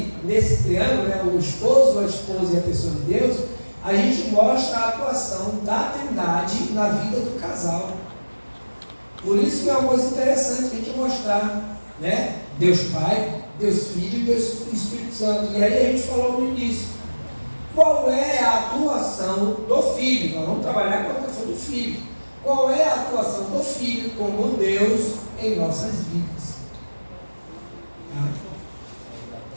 nesse triângulo, né, o esposo, a esposa e a pessoa de Deus, a gente mostra a atuação da Trindade na vida do casal. Por isso que é uma coisa interessante a gente mostrar, né? Deus Pai, Deus Filho e Deus Espírito Santo. E aí a gente falou no início, qual é a atuação do Filho? Nós vamos trabalhar com a atuação do Filho. Qual é a atuação do Filho como Deus em nossas vidas?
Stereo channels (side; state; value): both; inverted; correlation -1.00